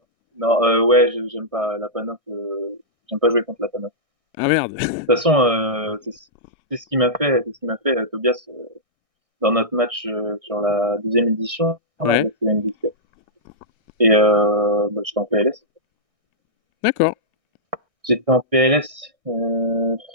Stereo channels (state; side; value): late; left; 1.6 ms